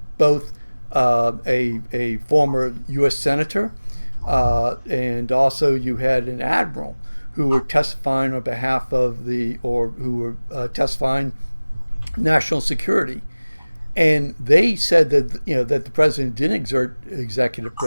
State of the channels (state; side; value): inverted; both; correlation -1.00